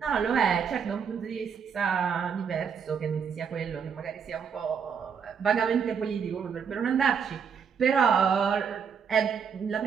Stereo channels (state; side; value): quieter; left; 6.8 dB